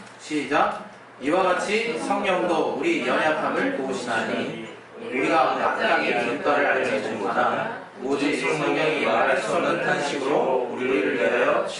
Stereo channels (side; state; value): both; identical; correlation 1.00